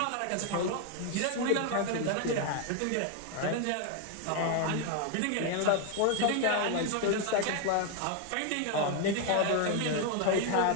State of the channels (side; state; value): both; different; correlation 0.01